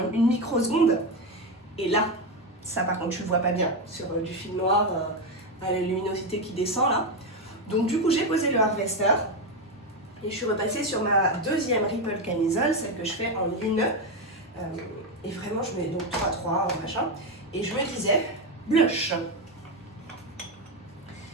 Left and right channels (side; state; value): both; normal; correlation 0.10